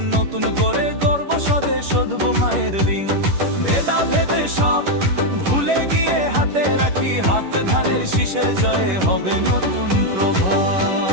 নতুন করে গর্ব স্বদেশ শোধব মায়ের ঋণ। ভেদা ভেদে সব ভুলে গিয়ে হাতে রাখি হাত, ধানের শীষের জয়ে হবে নতুন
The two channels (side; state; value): left; late; 11 ms